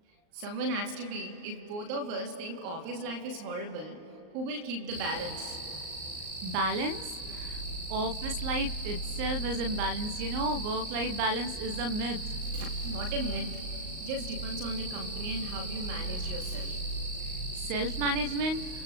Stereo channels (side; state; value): left; late; 38 ms